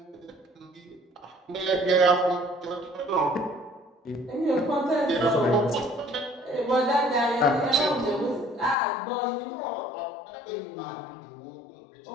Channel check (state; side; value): drops out; right; at 8.8 s